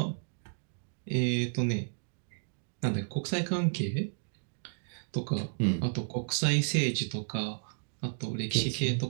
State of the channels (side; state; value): left; silent; digital silence